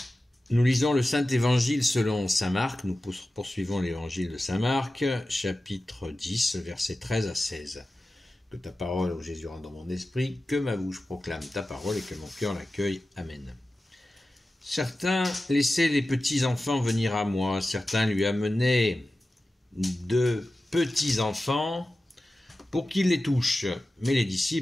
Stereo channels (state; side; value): normal; both; correlation 0.94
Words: Nous lisons le Saint-Évangile selon saint Marc. Nous poursuivons l'évangile de saint Marc, chapitre 10, versets 13 à 16. Que ta parole, ô Jésus, rentre dans mon esprit, que ma bouche proclame ta parole et que mon cœur l'accueille. Amen. Certains laissaient les petits enfants venir à moi, certains lui amenaient de petits enfants pour qu'ils les touchent, mais les